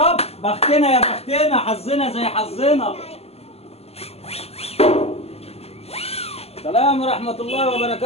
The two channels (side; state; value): right; late; 0.29 ms